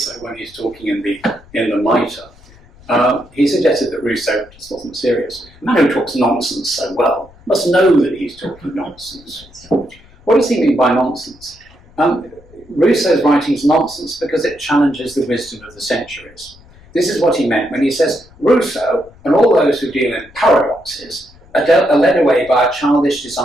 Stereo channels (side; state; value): left; noise; rumble, 25 dB below the sound